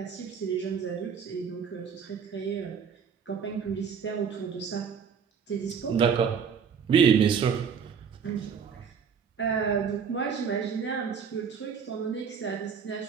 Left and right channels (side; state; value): left; quieter; 6.7 dB